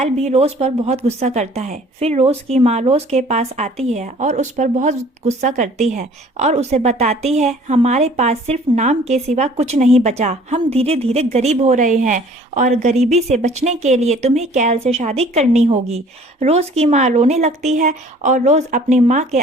भी रोज पर बहुत गुस्सा करता है। फिर रोज की माँ रोज के पास आती है और उस पर बहुत गुस्सा करती है और उसे बताती है, हमारे पास सिर्फ नाम के सिवा कुछ नहीं बचा। हम धीरे धीरे गरीब हो रहे हैं और गरीबी से बचने के लिए तुम्हें कैल से शादी करनी होगी। रोज की माँ रोने लगती है और रोज अपनी माँ के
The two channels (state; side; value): normal; both; correlation 0.52